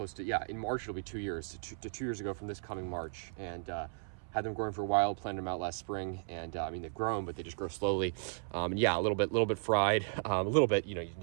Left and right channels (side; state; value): left; silent; 54 dB below the other